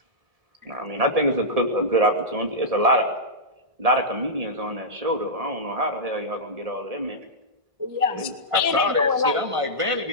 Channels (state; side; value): late; left; 1.6 ms